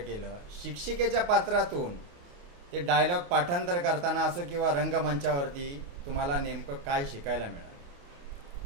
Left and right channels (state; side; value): late; left; 28 ms